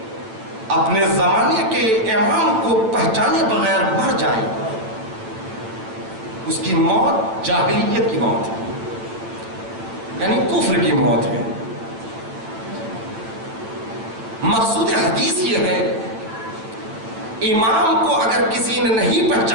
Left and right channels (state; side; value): late; left; 9.1 ms